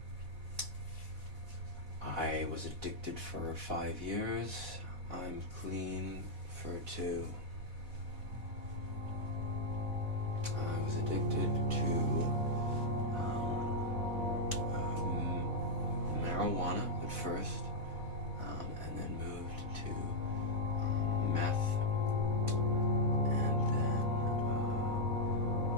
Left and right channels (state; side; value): late; left; 4.1 ms